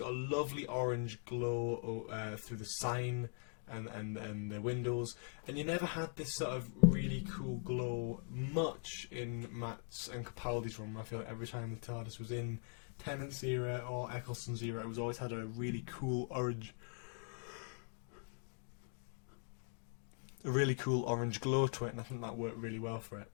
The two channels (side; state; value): right; silent; 50 dB below the other